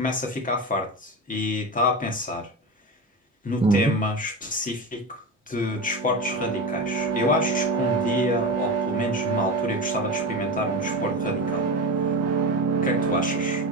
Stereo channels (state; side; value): normal; both; correlation 0.22